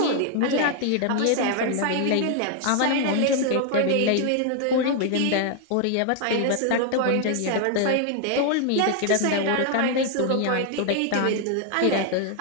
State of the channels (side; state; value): both; different; correlation 0.00